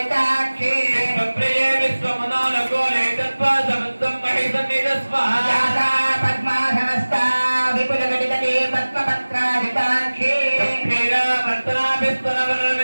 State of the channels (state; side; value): inverted; both; correlation -1.00